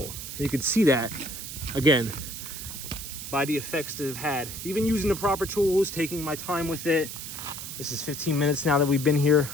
You can see that, again, by the effects that I've had. Even using the proper tools, taking my time with it. This is 15 minutes now that we've been here.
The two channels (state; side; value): noise; right; hiss, 8 dB below the sound